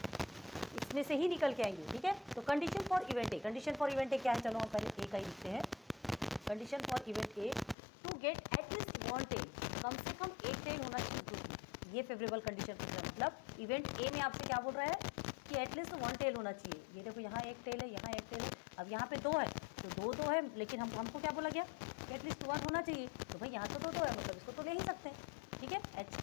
इसमें से ही निकल के आएंगे, ठीक है। तो condition for event A, condition for event A क्या है, चलो हम पहले ए का ही लिखते हैं। Condition for event A to get at least 1 tail, कम से कम एक टेल होना चाहिए ग्रुप में। ये फेवरेबल कंडीशन पूछ रहा है, मतलब इवेंट ए में आपसे क्या बोल रहा है कि एटलीस्ट 1 टेल होना चाहिए। ये देखो यहाँ एक टेल है, यहाँ एक टेल है, अब यहाँ पे 2 है तो 2 है, लेकिन हमको क्या बोला गया कि एटलीस्ट 1 होना चाहिए। तो भाई यहाँ तो 2 है, मतलब इसको तो ले ही सकते हैं, ठीक है। H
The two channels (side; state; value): right; drops out; at 7.8 s